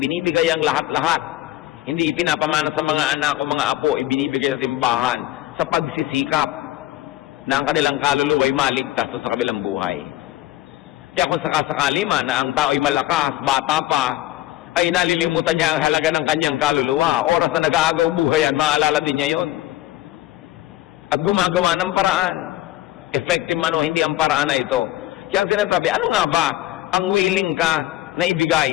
ang lahat-lahat. Hindi ipinapamana sa mga anak o mga apo, ibinibigay sa simbahan sa pagsisikap na ang kanilang kaluluwa ay maligtas sa kabilang buhay. Kaya kung sakasakali man na ang tao ay malakas, bata pa, ay nalilimutan niya ang halaga ng kanyang kaluluwa. Oras na nag-aagaw buhay yan, maalala din niya yun. At gumagawa ng paraan. Effective man o hindi ang paraan na ito. Kaya ang sinasabi, ano nga ba ang willing ka na ibigay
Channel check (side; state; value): right; quieter; 15.4 dB